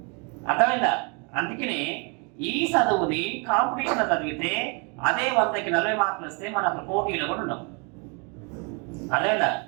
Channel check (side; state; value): left; quieter; 32.3 dB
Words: అర్థమైందా? అందుకనే ఈ చదువుని కాంపిటీషన్ చదివితే అదే 100కి 40 మార్కులు వస్తే మన అసలు పోటీలో కూడా ఉండవు. అదేనా